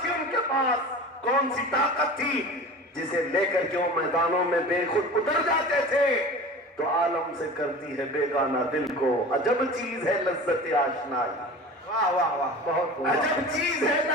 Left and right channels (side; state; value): both; normal; correlation 0.36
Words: تھی ان کے پاس, کون سی طاقت تھی جسے لے کر کے وہ میدانوں میں بے خود اتر جاتے تھے. تو عالم سے کرتی ہے بیگانہ دل کو, عجب چیز ہے لذت آشنائی. واہ واہ واہ, بہت عجب چیز ہے